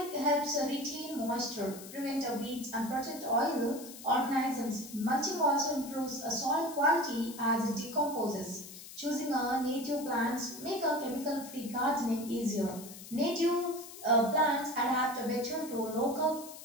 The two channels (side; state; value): left; noise; hiss, 14 dB below the sound